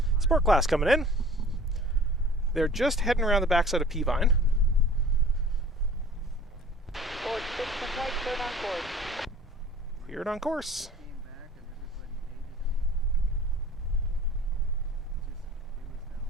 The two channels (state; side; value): normal; both; correlation 0.45